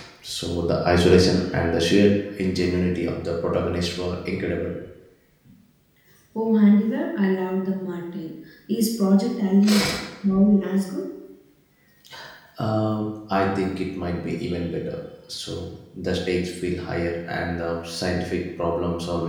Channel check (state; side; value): identical; both; correlation 1.00